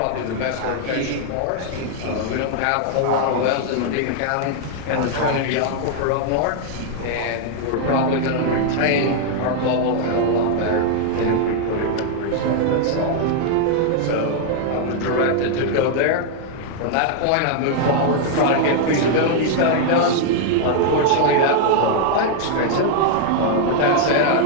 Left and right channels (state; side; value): different; both; correlation 0.00